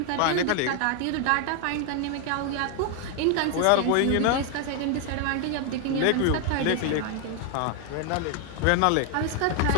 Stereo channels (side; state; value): both; different; correlation 0.00